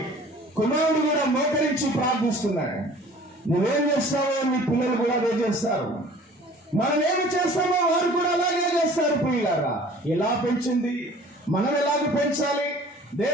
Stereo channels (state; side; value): normal; both; correlation 0.48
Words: కుమారుడు కూడా మోకరించి ప్రార్థిస్తున్నాడు. నువ్వేం చేస్తావో నీ పిల్లలు కూడా అదే చేస్తారు. మనం ఏమి చేస్తామో వారు కూడా అలాగే చేస్తారు. పిల్లలారా, ఎలా పెంచింది, మనం ఎలాగ పెంచాలి?